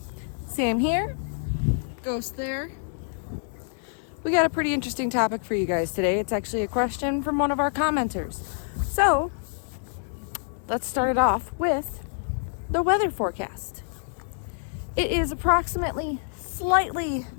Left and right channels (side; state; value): right; silent; digital silence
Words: Sam here, Ghost there. We got a pretty interesting topic for you guys today. It's actually a question from one of our commenters. So, let's start it off with the weather forecast. It is approximately slightly